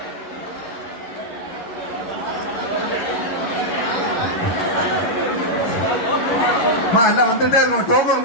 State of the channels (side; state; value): right; late; 11 ms